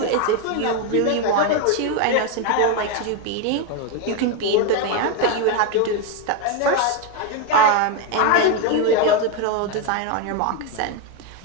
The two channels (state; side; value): different; both; correlation 0.02